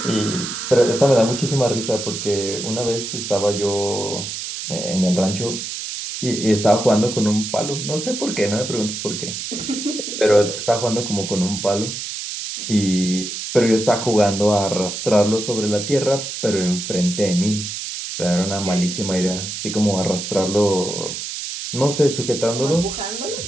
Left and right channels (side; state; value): right; noise; hiss, 6 dB below the sound